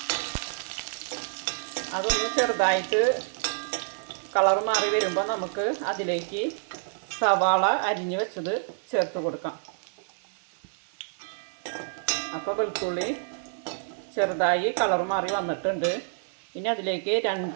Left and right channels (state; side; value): silent; left; 59 dB below the other